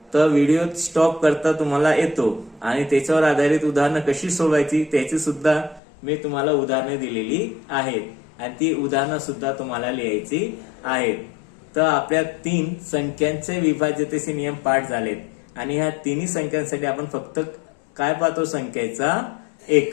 तर व्हिडिओ स्टॉप करता तुम्हाला येतो आणि त्याच्यावर आधारित उदाहरणं कशी सोडवायची त्याची सुद्धा मी तुम्हाला उदाहरणं दिलेली आहेत आणि ती उदाहरणं सुद्धा तुम्हाला लिहायची आहेत. तर आपल्या 3 संख्यांचे विभाज्यतेचे नियम पाठ झालेत आणि ह्या तिन्ही संख्यांसाठी आपण फक्त काय पाहतो संख्येचा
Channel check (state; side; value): drops out; right; at 5.8 s